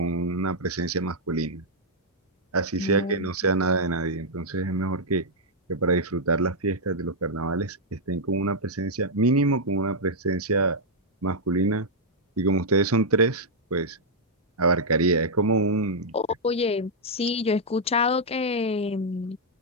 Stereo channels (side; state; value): both; normal; correlation -0.05